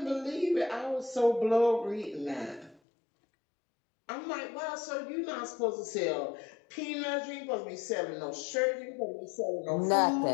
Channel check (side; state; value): right; drops out; at 2.8 s